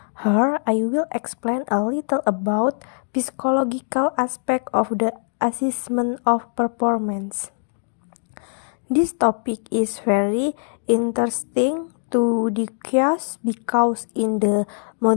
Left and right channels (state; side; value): silent; right; digital silence